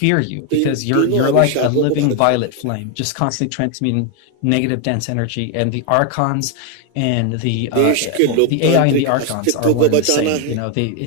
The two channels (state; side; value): different; both; correlation 0.01